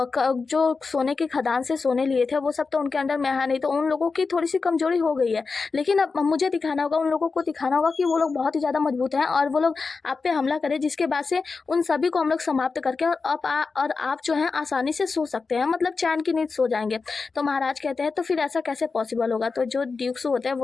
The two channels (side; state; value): right; quieter; 4.5 dB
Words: सोने की खदान से सोने लिए थे वो सब तो उनके अंदर में है नहीं, तो उन लोगों की थोड़ी सी कमजोरी हो गई है। लेकिन अब मुझे दिखाना होगा, उन लोगों को दिखाना होगा कि वो लोग बहुत ही ज्यादा मजबूत हैं और वो लोग आप पे हमला करें, जिसके बाद से उन सभी को हम लोग समाप्त करके और आप जो है आसानी से सो सकते हैं, मतलब चैन की नींद सो जाएंगे। तो महाराज कहते हैं तो फिर ऐसा कैसे पॉसिबल होगा? तो जो ड्यूक्स होते हैं